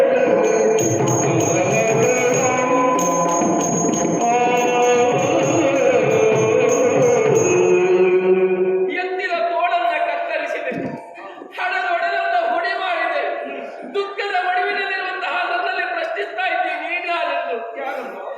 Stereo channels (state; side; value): identical; both; correlation 1.00